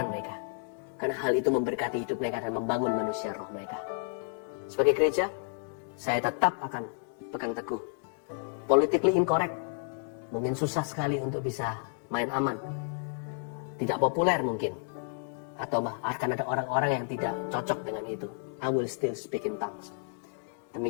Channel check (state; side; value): silent; right; digital silence